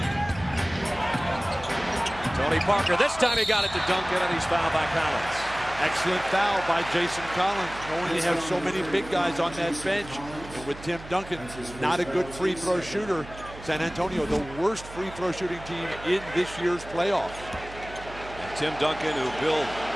Tony Parker, this time he got it to Duncan, and he's fouled by Collins. Excellent foul by Jason Collins, knowing they have so many big guys on that bench. And with Tim Duncan, not a good free throw shooter. San Antonio, the worst free throw shooting team in this year's playoffs. And Tim Duncan, who Bill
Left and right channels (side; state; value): right; noise; hum, 15 dB below the sound